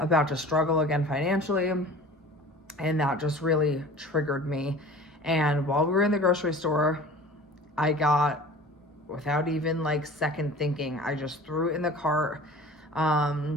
to struggle again financially. And that just really triggered me. And while we were in the grocery store, I got without even like second thinking, I just threw it in the cart.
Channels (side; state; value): both; normal; correlation 0.42